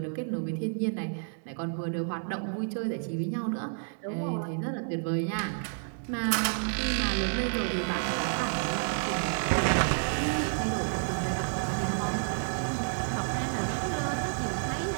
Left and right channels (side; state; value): left; silent; digital silence